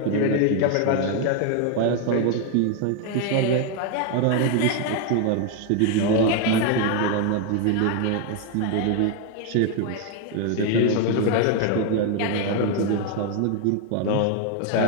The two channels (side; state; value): both; different; correlation 0.01